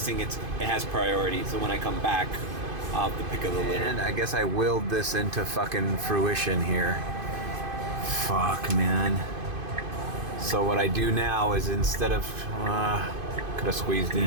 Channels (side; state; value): left; late; 2.5 ms